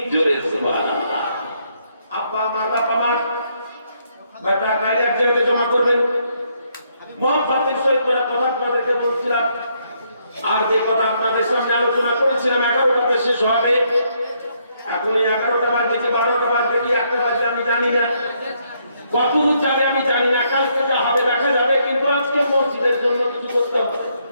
जोरे सुभान अल्लाह। আব্বা আমার, বাবা আমার, বেটা গাড়ি এক জায়গায় জমা করবেন। মোহাম্মদের সহিত করে কথা আপনাদেরকে বলছিলাম, আর যে কথা আপনাদের সামনে আলোচনা করেছিলাম 11টাতে শেষ হবে। এখন 11টা বাজে কি 12টা বাজে কি 1টা বাজে আমি জানি না, কতদূর যাবে আমি জানি না, কালকে যা হবে দেখা যাবে। কিন্তু আজকে মসজিদের জন্য কিছু করতে হবে।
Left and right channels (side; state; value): both; inverted; correlation -0.73